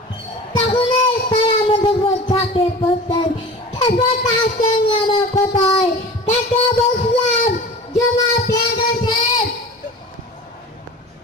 তখন তারা আমাদের উপর ঝাঁপিয়ে পড়ছেন। তার সঙ্গে আমার কথায় তাকে বলছিলাম জমা পেয়ে গেছেন,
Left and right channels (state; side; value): normal; both; correlation 0.37